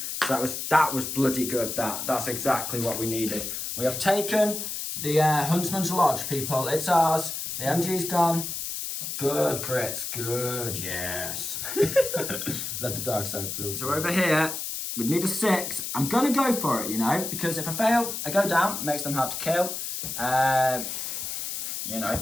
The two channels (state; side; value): noise; left; hiss, 4 dB below the sound